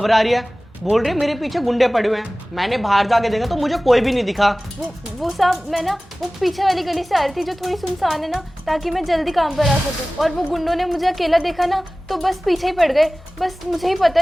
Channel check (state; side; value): normal; both; correlation 0.98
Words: रही है, बोल रही है मेरे पीछे गुंडे पड़े हुए हैं। मैंने बाहर जाके देखा तो मुझे कोई भी नहीं दिखा। वो साहब मैं ना वो पीछे वाली गली से आ रही थी जो थोड़ी सुनसान है ना, ताकि मैं जल्दी काम पर आ सकूं। और वो गुंडों ने मुझे अकेला देखा ना तो बस पीछे ही पड़ गए। बस मुझे ही पता